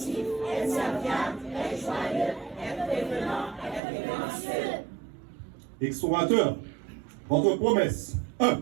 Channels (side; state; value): left; drops out; at 3.8 s